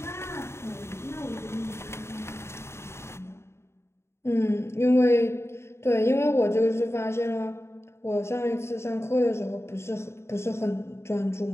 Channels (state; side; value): late; right; 0.13 ms